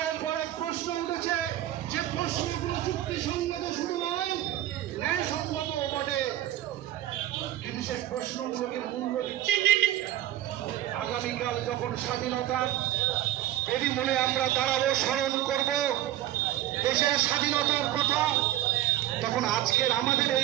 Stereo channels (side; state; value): left; quieter; 13.2 dB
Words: পর এক প্রশ্ন উঠেছে, যে প্রশ্নগুলো যুক্তিসঙ্গত শুধু নয়, ন্যায়সঙ্গত বটে, কিন্তু সেই প্রশ্নগুলোকে মূল্য দিচ্ছে। আগামীকাল যখন স্বাধীনতার বেদিমূলে আমরা দাঁড়াবো, স্মরণ করব দেশের স্বাধীনতার কথা, তখন আজকের আমাদের